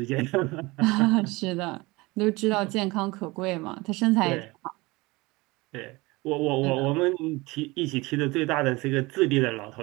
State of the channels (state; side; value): quieter; left; 22.8 dB